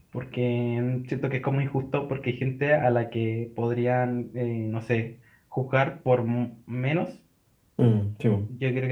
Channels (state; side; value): identical; both; correlation 1.00